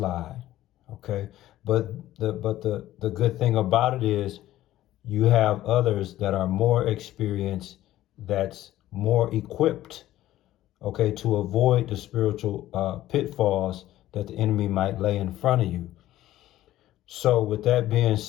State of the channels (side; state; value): right; quieter; 14.4 dB